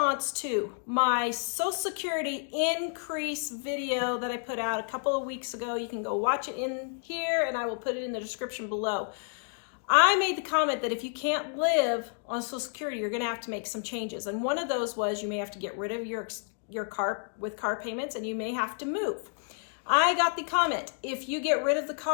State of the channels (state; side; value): silent; right; 58 dB below the other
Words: to my Social Security increase video that I put out a couple of weeks ago, you can go watch it in here and I will put it in the description below. I made the comment that if you can't live on Social Security, you're going to have to make some changes. And one of those was you may have to get rid of your car with car payments and you may have to move. I got the comment, if you get rid of the